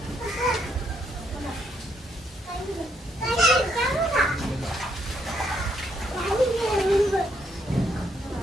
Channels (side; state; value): both; normal; correlation 0.73